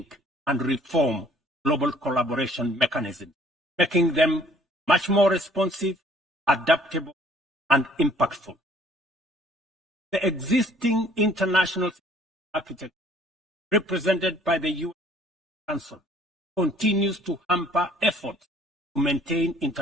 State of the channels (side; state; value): both; normal; correlation 0.58